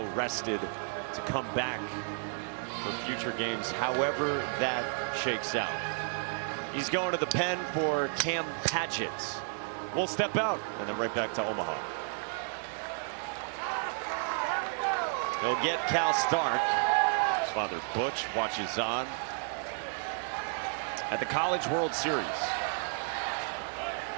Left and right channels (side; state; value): left; silent; 56 dB below the other